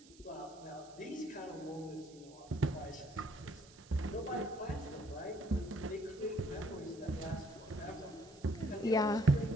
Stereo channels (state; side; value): noise; right; hiss, 23 dB below the sound